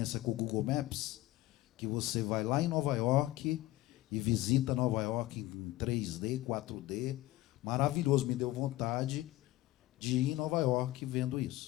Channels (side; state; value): right; quieter; 16.9 dB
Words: com o Google Maps, que você vai lá em Nova York e visita Nova York em 3D, 4D. Maravilhoso, me deu vontade de ir em Nova York vendo